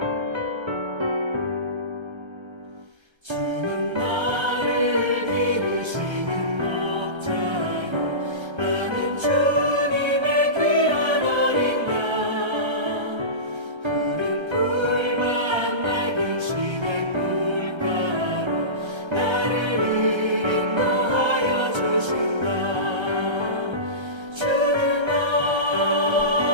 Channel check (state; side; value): late; left; 1.3 ms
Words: 주는 나를 기르시는 목자요, 나는 주님의 귀한 어린 양. 푸른 풀만 맑은 시냇 물가로 나를 인도하여 주신다. 주는